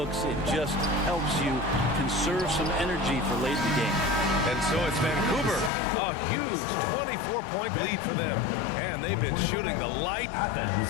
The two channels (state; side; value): drops out; right; at 5.7 s